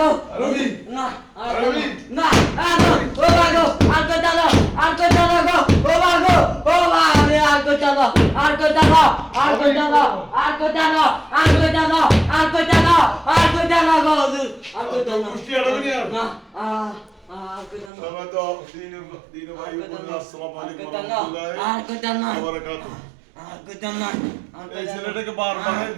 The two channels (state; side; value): drops out; left; at 17.9 s